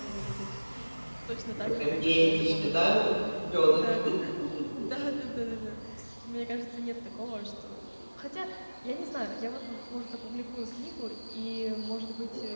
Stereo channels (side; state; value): both; inverted; correlation -1.00